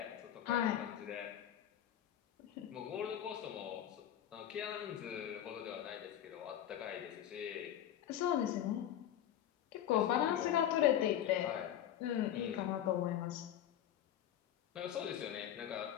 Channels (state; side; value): quieter; right; 11.0 dB